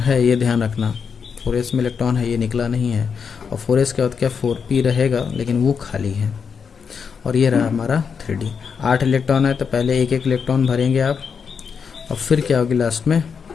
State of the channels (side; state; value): right; quieter; 6.3 dB